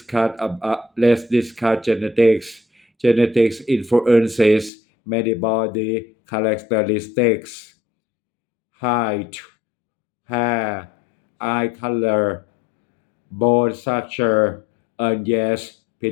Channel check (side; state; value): right; drops out; at 4.7 s